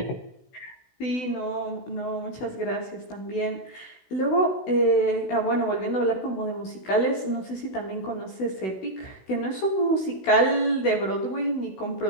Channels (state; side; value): late; right; 16 ms